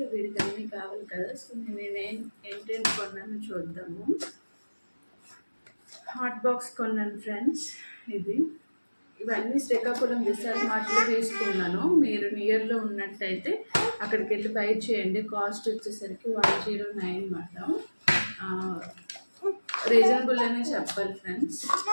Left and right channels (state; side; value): inverted; both; correlation -1.00